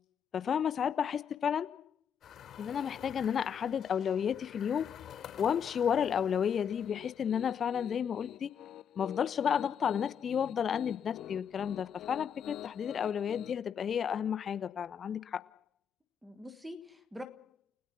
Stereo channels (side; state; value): right; quieter; 7.8 dB